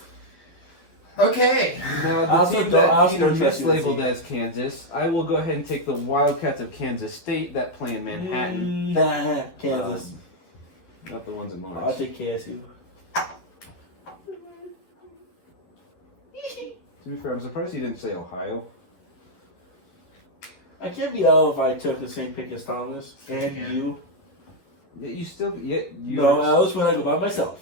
Okay. Now, I the also team don't- that I also Peter don't trust mislabeled USC. as Kansas, I will go ahead and take the Wildcats of Kansas State that play in Manhattan. Kansas. Not the ones in I'll Lawrence. take KSU. To be fair, I'm surprised he didn't say Ohio. I can't be out if I took the same pick as Thomas and Yeah. you. Yeah, you still. Yeah, you No, I was when I go by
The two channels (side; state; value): right; late; 11 ms